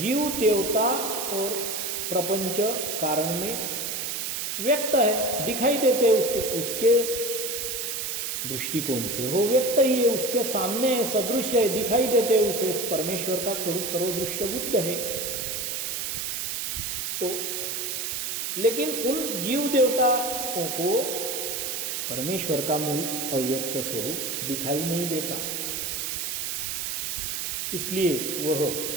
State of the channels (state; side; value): noise; right; hiss, 2 dB below the sound